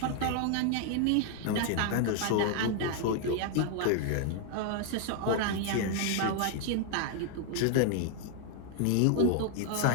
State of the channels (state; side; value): different; both; correlation 0.00